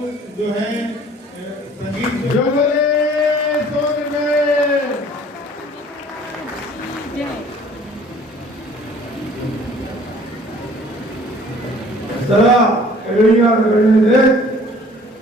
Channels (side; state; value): both; normal; correlation 0.53